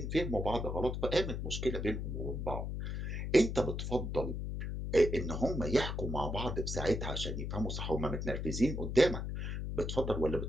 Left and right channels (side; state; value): left; noise; hum, 3 dB below the sound